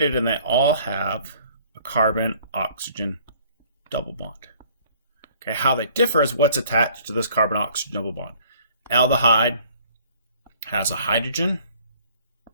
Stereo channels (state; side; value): inverted; both; correlation -0.56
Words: and they all have a carbon-oxygen double bond. Okay, how they differ is what's attached to this carbon-oxygen double bond. Aldehyde has a hydrogen